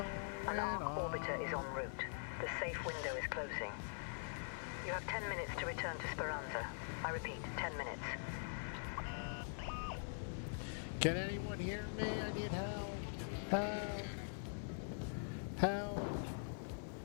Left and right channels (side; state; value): right; silent; digital silence